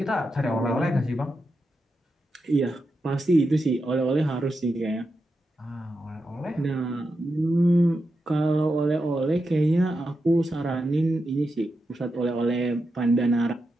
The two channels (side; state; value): both; normal; correlation 0.88